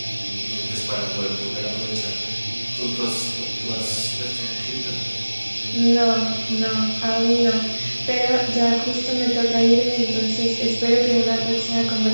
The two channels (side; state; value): both; inverted; correlation -1.00